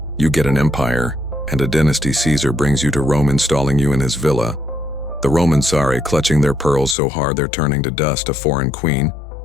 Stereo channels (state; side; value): drops out; right; at 7.0 s